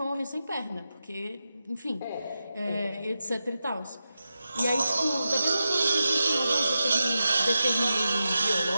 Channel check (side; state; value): both; inverted; correlation -0.90